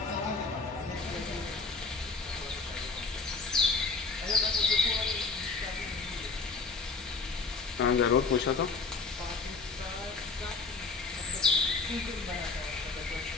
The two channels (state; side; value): quieter; right; 4.3 dB